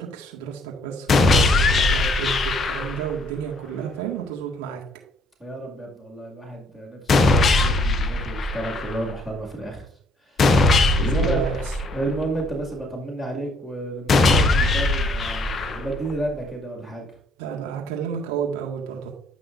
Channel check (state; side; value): normal; both; correlation 0.65